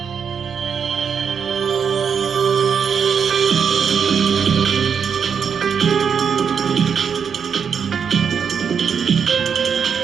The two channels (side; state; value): left; quieter; 6.9 dB